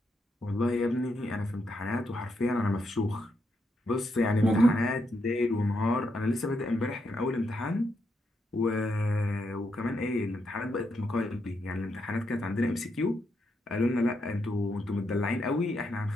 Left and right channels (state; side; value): normal; both; correlation 0.80